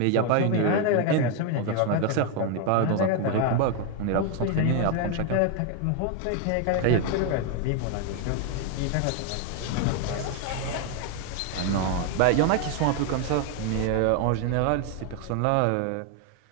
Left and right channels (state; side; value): different; both; correlation 0.01